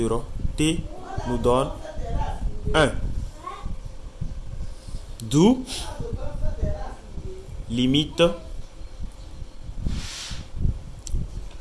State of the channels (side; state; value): both; identical; correlation 1.00